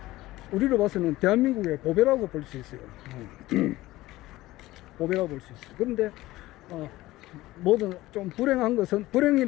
우리로 봐서는 대한민국의 보배라고 볼 수 있어요. 보배라고 볼 수 있어요. 그런데 뭐든 좀 불행한 것은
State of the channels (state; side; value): quieter; right; 17.5 dB